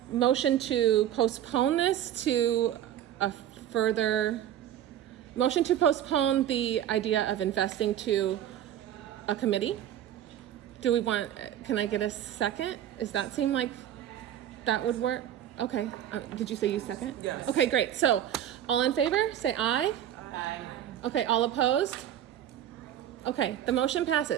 motion to postpone this to a further... Motion to postpone the idea of investing to a committee. Can I get a second? Does that seem like that would work? Okay, did you say you second? Yes. Okay, great. So, all in favor, say aye. Aye. Okay, all opposed? Okay, the motion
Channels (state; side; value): quieter; left; 11.1 dB